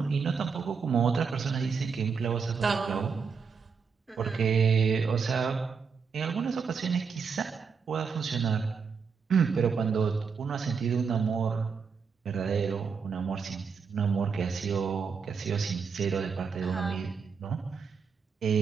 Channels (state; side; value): quieter; left; 5.8 dB